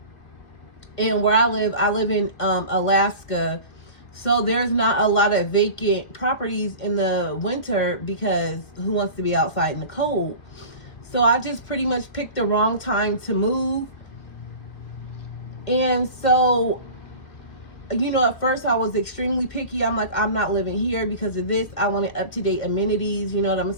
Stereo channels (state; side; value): late; right; 2.0 ms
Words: and where I live in Alaska, so there's not a lot of vacant properties in the winter because who wants to be outside in the cold? So I just pretty much picked the wrong time to move. And so, at first I was extremely picky. I'm like, I'm not living here because of this. I wanted up-to-date amenities, you know what I'm